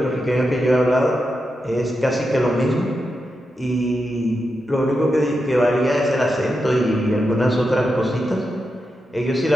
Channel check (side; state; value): both; normal; correlation 0.87